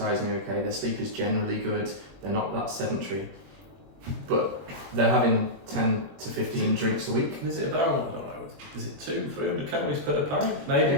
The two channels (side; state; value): left; late; 21 ms